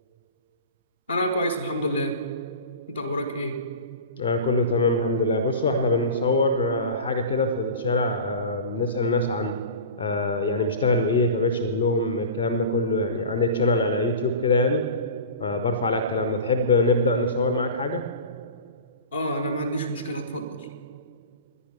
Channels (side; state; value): both; inverted; correlation -0.34